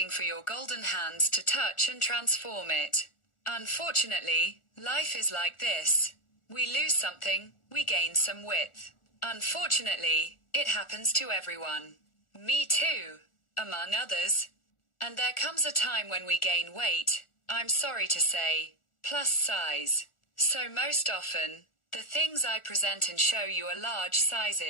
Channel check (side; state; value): right; late; 1.4 ms